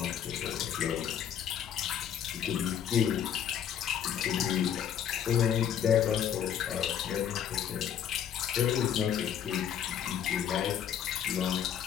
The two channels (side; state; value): right; quieter; 9.1 dB